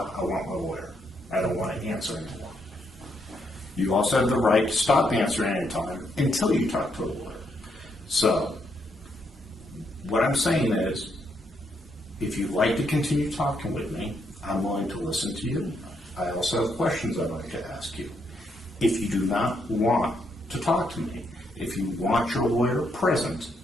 I want my lawyer. I don't want to answer anymore. You also have the right to stop answering any time until you talk to a lawyer. So, what I'm saying is, if you'd like to continue talking with me, I'm willing to listen to you. I also have questions I'd like to ask you. If you do not want to talk to me, if you want your lawyer present,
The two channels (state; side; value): normal; both; correlation 0.77